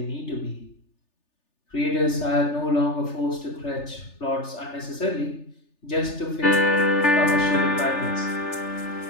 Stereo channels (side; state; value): right; late; 3.3 ms